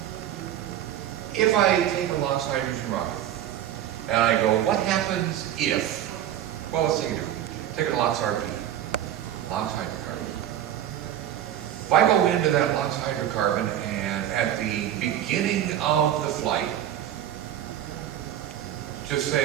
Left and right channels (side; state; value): left; quieter; 11.3 dB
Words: if I take a LOX hydrogen rocket, and I go, what happens if, well, let's take it different. Take a LOX RP, LOX hydrocarbon. If I go into that LOX hydrocarbon and at the beginning of the flight, just